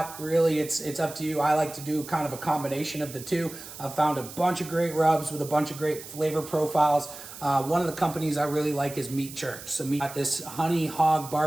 really it's up to you. I like to do kind of a combination of the two. I've found a bunch of great rubs with a bunch of great flavor profiles. One of the companies I really like is Meat Church. So we got this honey hog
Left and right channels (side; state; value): right; noise; hiss, 14 dB below the sound